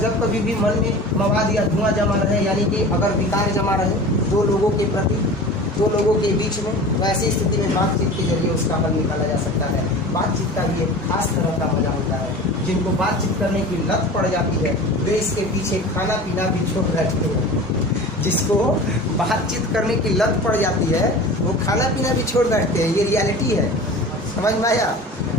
जब कभी भी मन में मवाद या धुआं जमा रहे, यानी कि अगर विकार जमा रहे दो लोगों के प्रति, दो लोगों के बीच में, तो ऐसी स्थिति में बातचीत के जरिए उसका हल निकाला जा सकता है। बातचीत का भी एक खास तरह का मजा होता है। जिनको बातचीत करने की लत पड़ जाती है वे इसके पीछे खाना पीना भी छोड़ बैठते हैं। जिसको बातचीत करने की लत पड़ जाती है वो खाना पीना भी छोड़ बैठते हैं। ये रियलिटी है, समझ में आया?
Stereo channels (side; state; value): both; normal; correlation 0.37